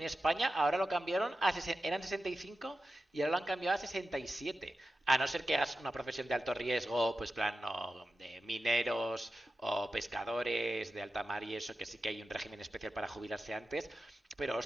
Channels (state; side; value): normal; both; correlation 0.92